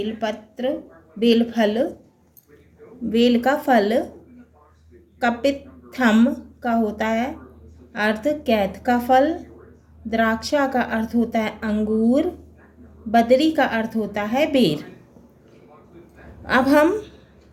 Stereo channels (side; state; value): both; identical; correlation 1.00